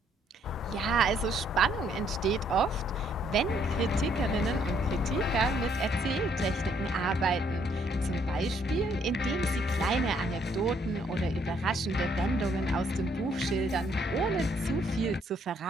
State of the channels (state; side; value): normal; both; correlation 0.68